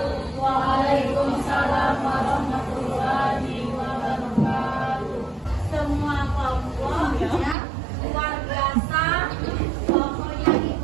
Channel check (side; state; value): left; drops out; at 7.6 s